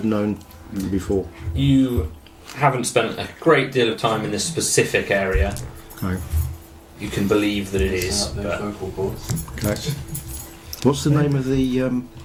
known before. You haven't spent a great deal of time in this specific area. Okay. You can believe that it is. Set up those But vocal cords. Okay. What's the name of the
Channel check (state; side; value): identical; both; correlation 1.00